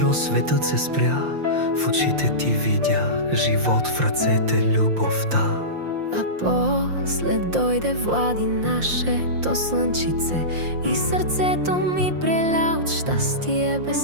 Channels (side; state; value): left; late; 5.7 ms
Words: светът се спря. В очите ти видя живот, в ръцете любовта. А после дойде Влади, нашето слънчице, и сърцето ми преля от щастие